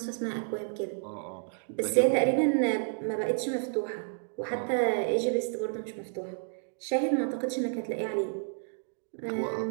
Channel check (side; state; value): left; silent; digital silence